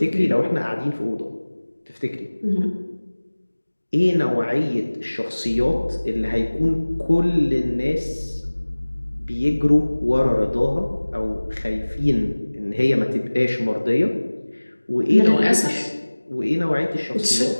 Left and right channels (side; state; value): both; inverted; correlation -1.00